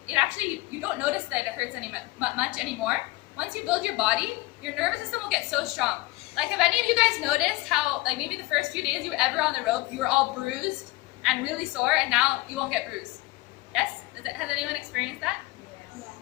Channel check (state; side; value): quieter; right; 20.6 dB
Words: actually, you don't notice that it hurts much anymore. Once you build your body, your nervous system will get so strong. Like, have any of you guys noticed how, like, maybe the first few days you were ever on the rope, you were all bruised and really sore, and now you won't get bruised? Yes? Has anyone experienced that? Yeah.